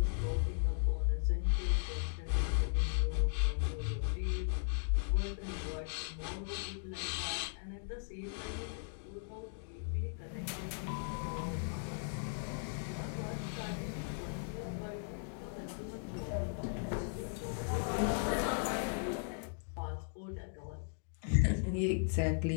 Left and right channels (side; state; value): right; silent; digital silence